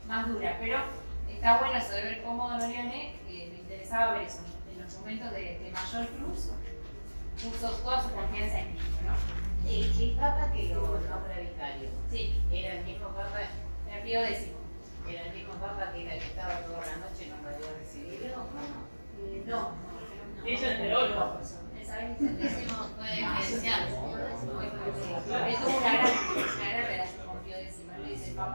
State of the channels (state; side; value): inverted; both; correlation -1.00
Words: más dura. Pero está bueno eso de ver cómo Don Orione, me interesaba ver eso, en los momentos de mayor cruz, puso toda su confianza en Cristo, ¿no? El Papa que lo nombra vicario, Sí, era el mismo Papa, era Pío X. era el mismo Papa que era el que estaba toda la noche y no podía recibirlo, ¿o no? No. Ella enteró el Papa. Décimo fue esencial. Él tuvo una gran relación con Pío X, le dice el